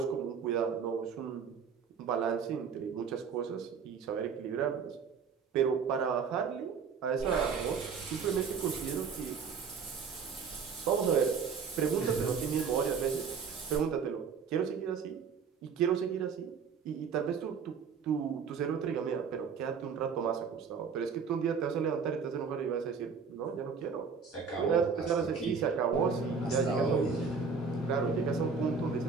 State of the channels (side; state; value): left; quieter; 5.9 dB